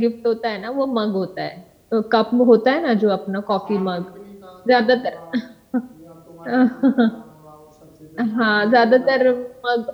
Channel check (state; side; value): identical; both; correlation 1.00